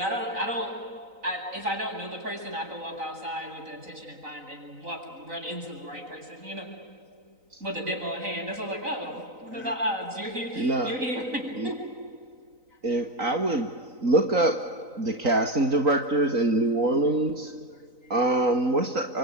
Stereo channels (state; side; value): late; left; 3.9 ms